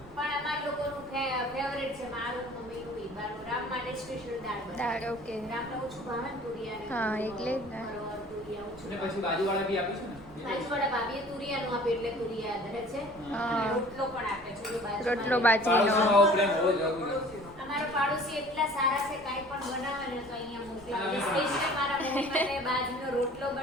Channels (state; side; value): noise; right; rumble, 22 dB below the sound